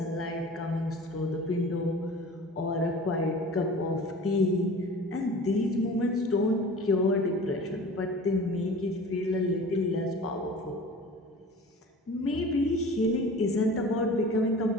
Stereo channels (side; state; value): both; normal; correlation 0.40